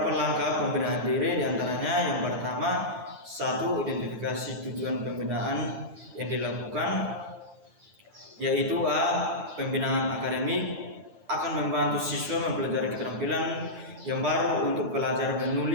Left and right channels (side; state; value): left; late; 9.0 ms